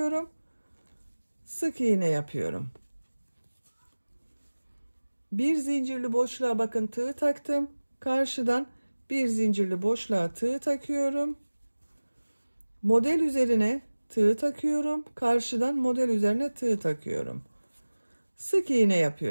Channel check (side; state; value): both; inverted; correlation -1.00